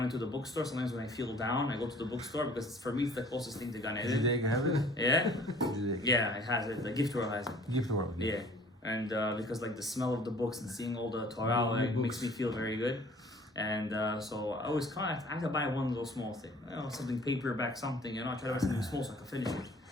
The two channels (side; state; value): both; normal; correlation 0.52